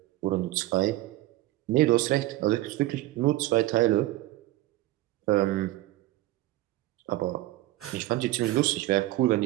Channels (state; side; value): quieter; left; 16.8 dB